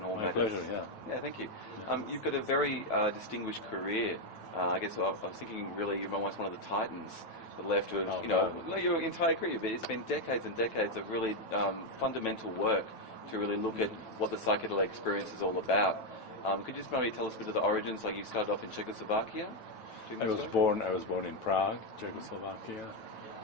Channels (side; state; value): right; late; 9.1 ms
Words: all matters. My pleasure, yeah. Yeah, thank you. Yeah. You've got a very distinguished career. I guess I was thinking really you're almost one of the titans that left of, your entire career. But it's been decades and decades of really fundamental work to really look at what the psychedelic experience is all about. Could you just maybe tell us a bit of the origins? Like you started off in Czechoslovakia? I was born in Prague, Czechoslovakia.